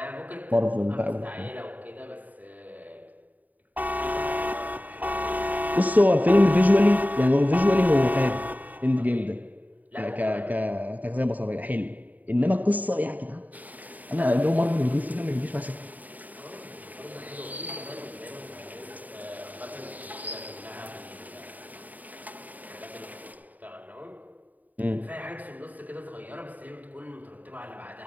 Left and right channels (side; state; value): left; late; 0.078 ms